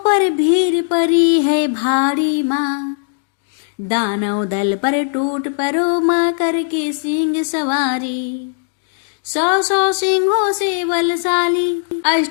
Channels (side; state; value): right; silent; digital silence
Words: भीड़ पड़ी है भारी माँ, दानव दल पर टूट पड़ो माँ करके सिंह सवारी। 100 सिंहों से बलशाली,